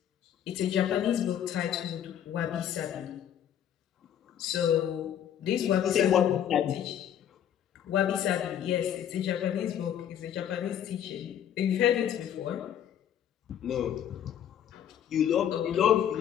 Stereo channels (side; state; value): right; quieter; 9.9 dB